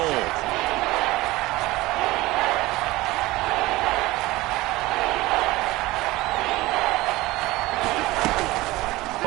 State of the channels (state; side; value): quieter; left; 19.5 dB